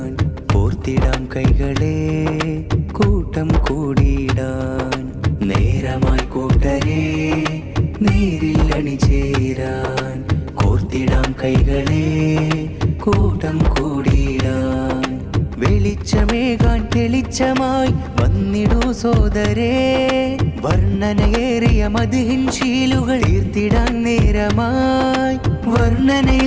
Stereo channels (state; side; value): identical; both; correlation 1.00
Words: കോർത്തിടാം കൈകളെ കൂട്ടം കൂടിയിടാൻ. നേരമായി കൂട്ടരേ നേരിൽ അണിചേരാൻ കോർത്തിടാം കൈകളെ കൂട്ടം കൂടിയിടാൻ. വെളിച്ചമേകാൻ തെളിച്ചമായി വന്നിടൂ സോദരേ, വർണ്ണനയേറിയ മദ്ഹിൻ ശീലുകൾ തീർത്തിടാൻ നേരമായി.